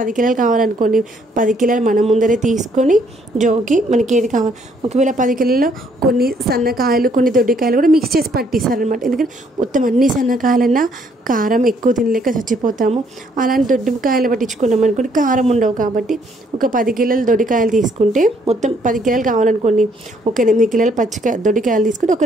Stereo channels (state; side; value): normal; both; correlation 0.67